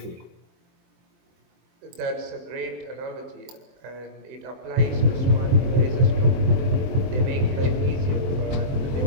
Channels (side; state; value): left; late; 23 ms